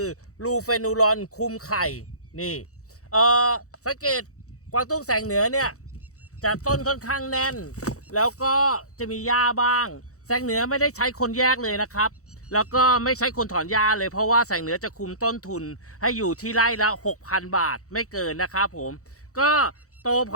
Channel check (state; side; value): late; right; 0.65 ms